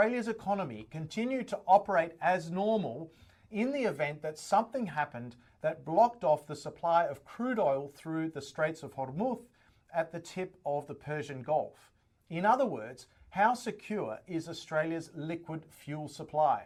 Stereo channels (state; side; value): identical; both; correlation 1.00